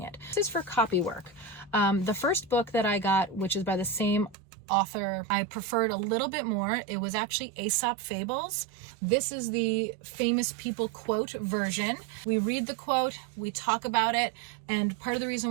it. This is for copy work. The first book that I got, which is by the same author, I preferred a little bit more. It was actually Aesop Fables. This is the famous people quote version. We read the quote, we talk about it, and part of the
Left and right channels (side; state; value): left; drops out; at 4.4 s